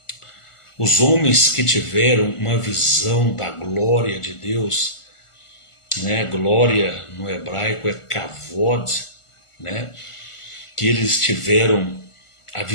os homens que tiveram uma visão da glória de Deus, né? Glória no hebraico é kavod, né? Que eles tiveram a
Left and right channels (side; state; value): right; late; 1.4 ms